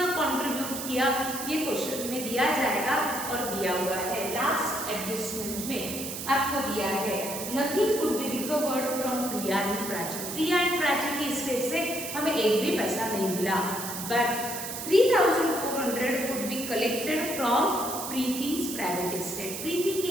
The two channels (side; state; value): right; noise; hiss, 6 dB below the sound